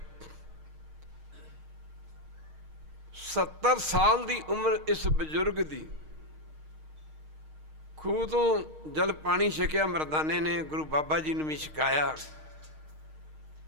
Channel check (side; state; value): left; late; 6.5 ms